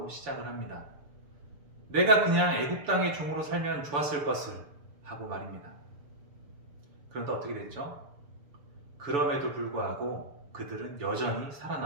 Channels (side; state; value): left; late; 6.9 ms